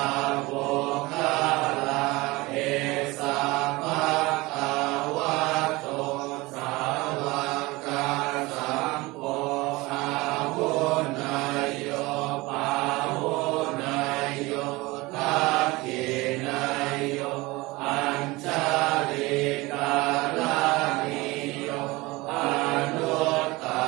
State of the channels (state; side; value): quieter; left; 22.0 dB